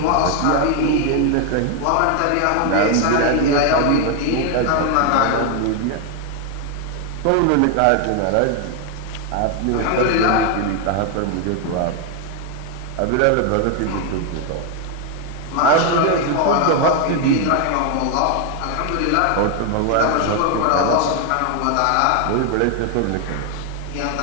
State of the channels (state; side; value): different; both; correlation 0.01